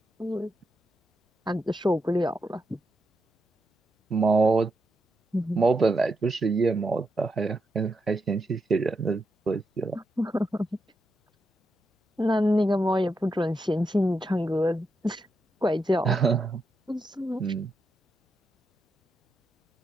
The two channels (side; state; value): both; normal; correlation 0.84